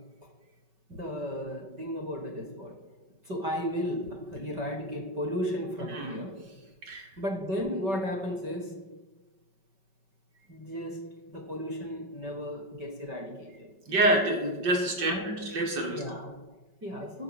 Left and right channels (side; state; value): left; late; 5.3 ms